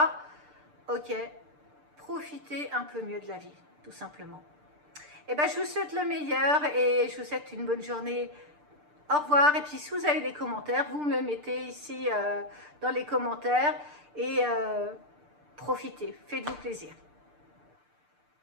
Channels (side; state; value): left; late; 6.7 ms